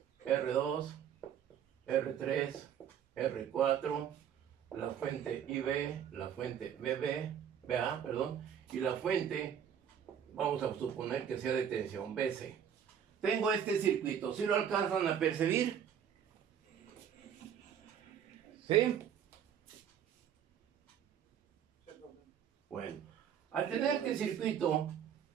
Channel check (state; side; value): quieter; left; 8.7 dB